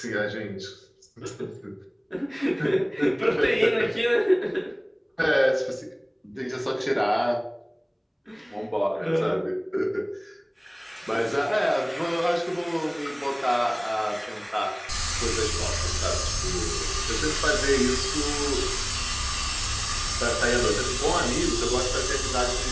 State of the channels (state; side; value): identical; both; correlation 1.00